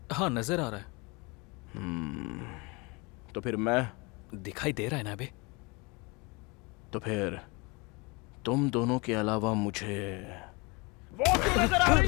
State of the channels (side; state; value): right; quieter; 27.6 dB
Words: हाँ, नजर आ रहा है। तो फिर मैं दिखाई दे रहा है ना अभी? तो फिर तुम दोनों के अलावा मुझे वो क्यों नजर आ रही